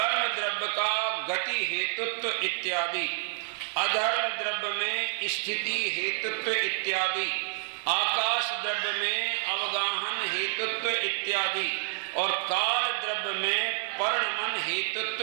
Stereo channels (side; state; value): left; silent; digital silence